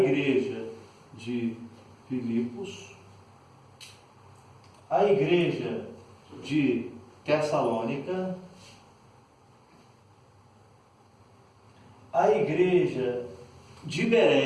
de Filipos, a igreja de Tessalônica, a igreja de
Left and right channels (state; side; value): identical; both; correlation 1.00